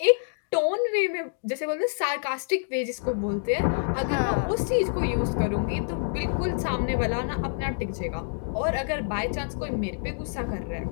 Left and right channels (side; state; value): right; silent; digital silence